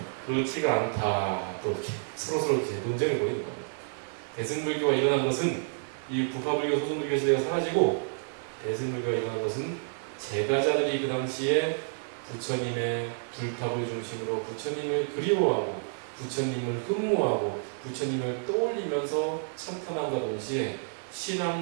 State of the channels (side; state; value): left; silent; digital silence